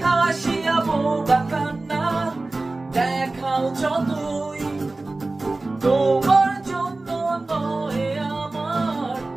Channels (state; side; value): quieter; left; 3.1 dB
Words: হাসিয়া বোবা কান্না দেখাও যতই, তোমার জন্য নয় আমার